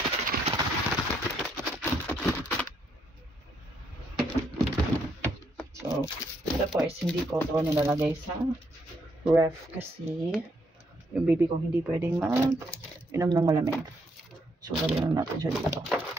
So, tapos hindi ko ito nilalagay sa ref kasi yung baby ko hindi pwedeng inom ng malamig. So, lagyan lang natin siya dito.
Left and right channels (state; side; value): normal; both; correlation 0.74